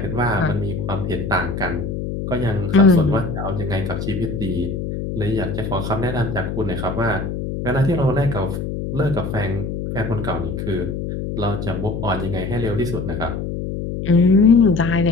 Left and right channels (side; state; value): left; noise; hum, 4 dB below the sound